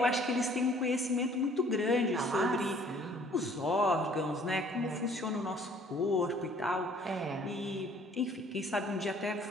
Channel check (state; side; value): normal; both; correlation 0.57